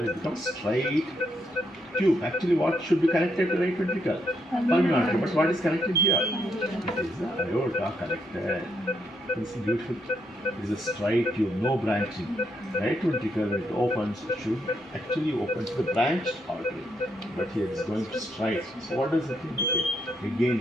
becomes straight tube. Actually, what should be connected to right ventricle? Pulmonary artery. But what is connected here? It is the aorta connected. This is beautiful. It is a straight tube, no branching. Right ventricle, when it opens, it should actually open to the branched artery. But here it is going to straight. So what does it indicate?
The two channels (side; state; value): both; normal; correlation 0.77